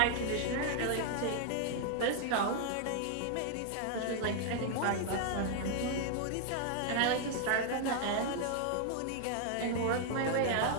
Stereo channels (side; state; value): both; different; correlation 0.00